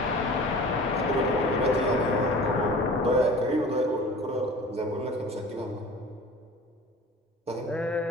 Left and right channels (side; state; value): both; normal; correlation 0.41